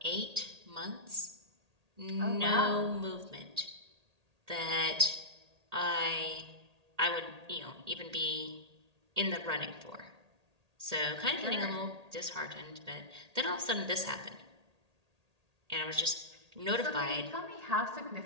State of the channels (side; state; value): left; late; 1.8 ms